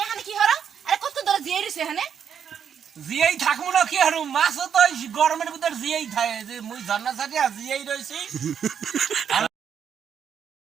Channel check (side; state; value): left; quieter; 8.0 dB